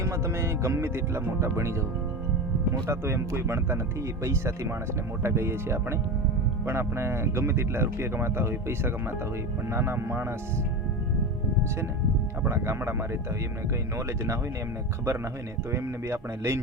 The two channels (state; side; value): normal; both; correlation 0.23